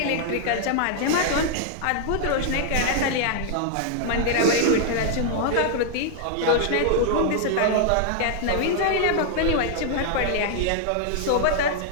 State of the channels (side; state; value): both; different; correlation 0.00